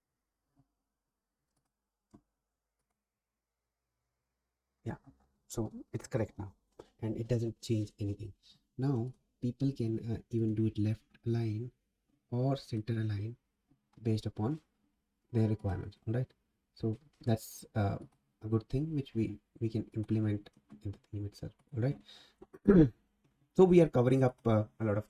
Yeah, so it's correct now and it doesn't change anything. Now people can even do it left align or center align based upon their requirements. All right, so that's a good thing which we can implement in the theme itself. All right. So we are covering up a lot of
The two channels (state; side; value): identical; both; correlation 1.00